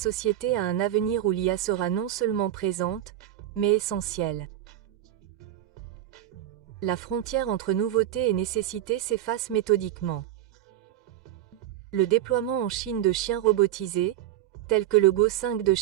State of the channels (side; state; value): left; quieter; 12.5 dB